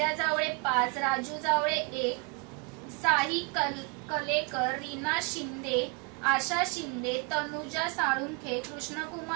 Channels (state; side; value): quieter; left; 30.8 dB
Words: जावळे 5, राजू जावळे 1, साई कलेकर, रीना शिंदे, आशा शिंदे, तनुजा साळुंखे,